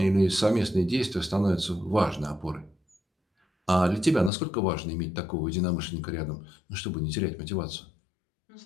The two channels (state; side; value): drops out; right; at 4.3 s